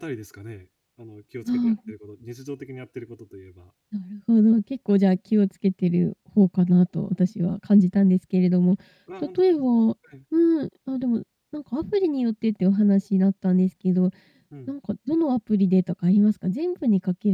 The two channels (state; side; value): identical; both; correlation 1.00